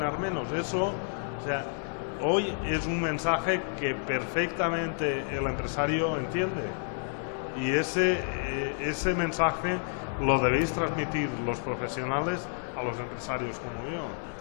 menos. Eso, o sea, hoy es un mensaje que perfectamente el empresario entiende, y ese mensaje lo debéis transmitir los profesionales a los empresarios como yo.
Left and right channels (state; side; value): silent; right; 58 dB below the other